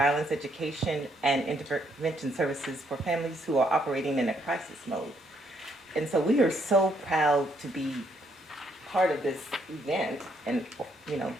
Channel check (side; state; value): both; normal; correlation 0.72